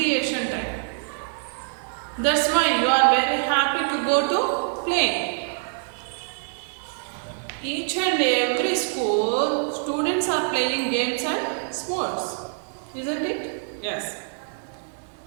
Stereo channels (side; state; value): left; silent; digital silence